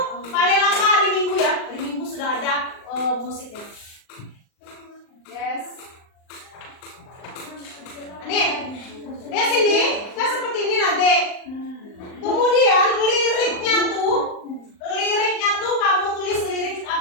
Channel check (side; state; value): right; late; 39 ms